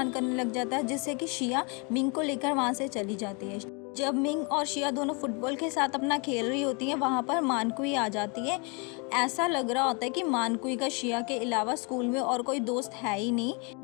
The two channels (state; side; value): quieter; right; 32.9 dB